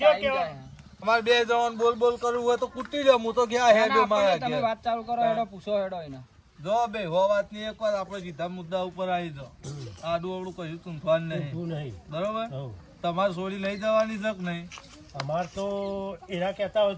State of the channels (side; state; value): both; identical; correlation 1.00